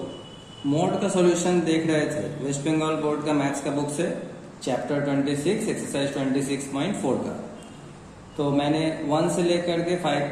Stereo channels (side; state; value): both; identical; correlation 1.00